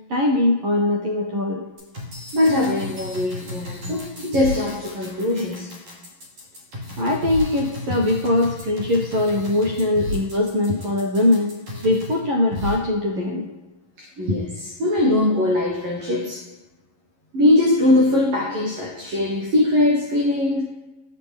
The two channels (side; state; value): left; late; 11 ms